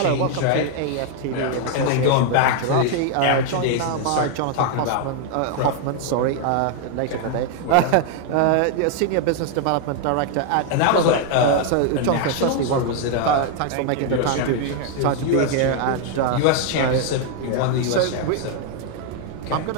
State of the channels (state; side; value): different; both; correlation 0.00